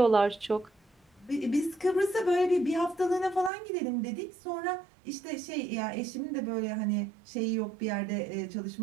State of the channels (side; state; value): left; drops out; at 3.5 s